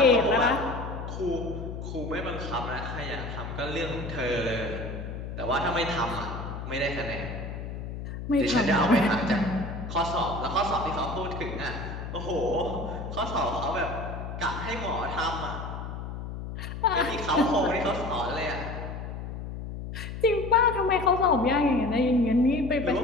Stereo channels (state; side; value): noise; left; hum, 7 dB below the sound